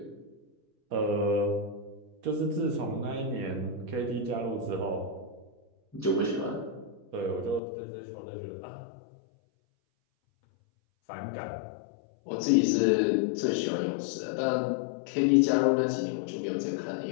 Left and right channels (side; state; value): right; drops out; at 7.6 s